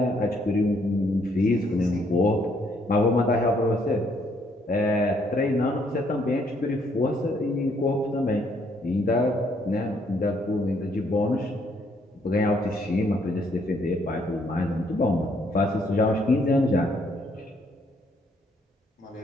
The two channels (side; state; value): both; normal; correlation 0.69